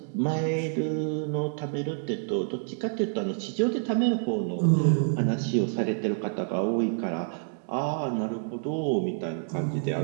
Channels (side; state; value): left; silent; digital silence